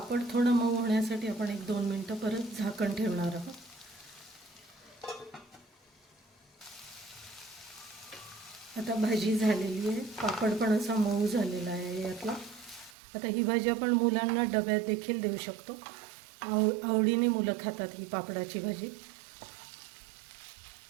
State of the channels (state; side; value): drops out; left; at 13.0 s